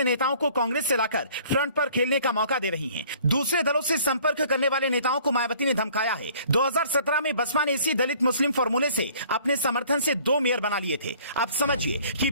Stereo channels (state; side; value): inverted; both; correlation -0.54